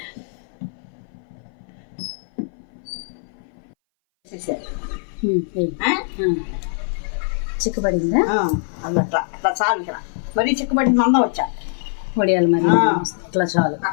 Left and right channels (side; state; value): right; silent; 60 dB below the other